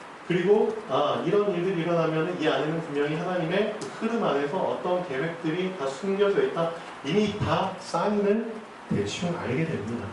그리고 이런 일들이 일어나면 이 안에는 분명히 하나님의 그 흐름 안에서 어떤 계획들이 다 숨겨져 있다. 이미 다 사인을 대충 알게 됩니다.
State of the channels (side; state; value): both; identical; correlation 1.00